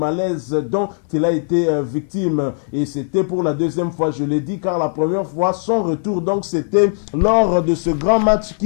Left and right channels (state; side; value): silent; right; 60 dB below the other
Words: dont il a été victime. Et c'était pour la 2e fois, je l'ai dit, car la première fois, son retour, donc c'était lors de ce grand match